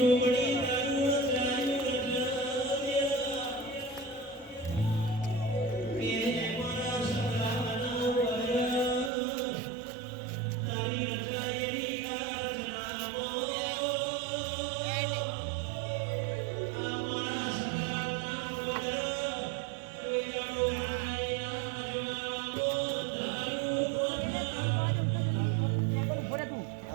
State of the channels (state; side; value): drops out; left; at 9.1 s